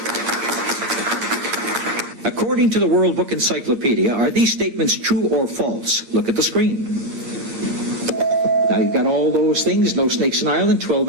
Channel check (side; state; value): left; late; 9.5 ms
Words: According to the World Book Encyclopedia, are these statements true or false? Look at the screen. You've got all those things. No snakes in Ireland. 12